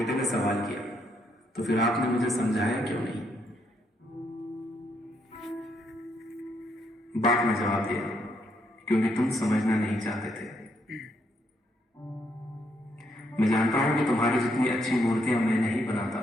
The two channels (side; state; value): both; normal; correlation 0.75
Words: ने सवाल किया, तो फिर आपने मुझे समझाया क्यों नहीं? बाप ने जवाब दिया, क्योंकि तुम समझना नहीं चाहते थे। मैं जानता हूं कि तुम्हारी जितनी अच्छी मूर्तियां मैं नहीं बनाता,